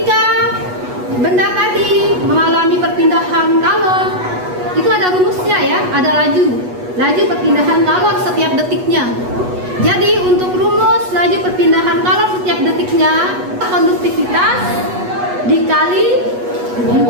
benda tadi mengalami perpindahan kalor, itu ada rumusnya, ya, ada laju perpindahan kalor setiap detiknya. Jadi untuk rumus laju perpindahan kalor setiap detiknya, konduktivitas dikali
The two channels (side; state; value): left; late; 8.2 ms